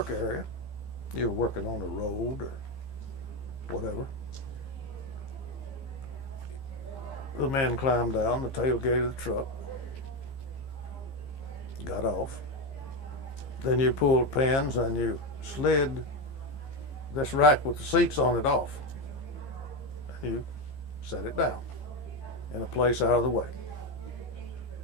area, you were working on a road or whatever, The men climbed down the tailgate of the truck, got off. Then you pulled pins and you slid this rack with the seats on it off. And you set it down in a place out of the way.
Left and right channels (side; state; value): right; late; 15 ms